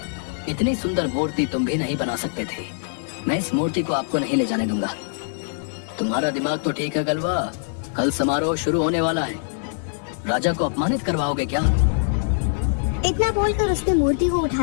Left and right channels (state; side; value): silent; right; 63 dB below the other